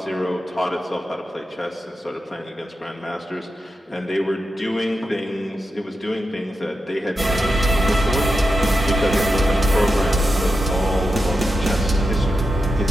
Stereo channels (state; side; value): normal; both; correlation 0.89